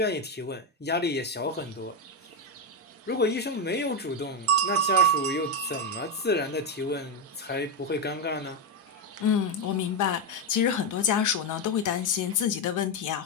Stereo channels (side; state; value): both; normal; correlation 0.08